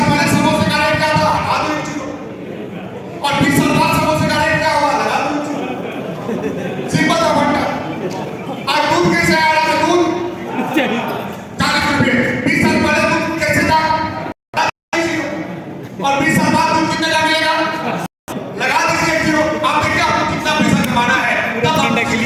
पहले समोसे का रेट क्या था? लगा दो 1 किलो। और 20 साल बाद समोसे का रेट क्या हुआ? लगा दो 1 किलो। सिंपल सा फंडा। आज दूध कैसे आ रहा है? दूध 40 रुपए। 20 साल पहले दूध कैसे था? और 20 साल बाद दूध कितने का मिलेगा? लगा दीजिए 1 किलो। आप देखिए आपको कितना पैसा कमाना है।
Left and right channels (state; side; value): identical; both; correlation 1.00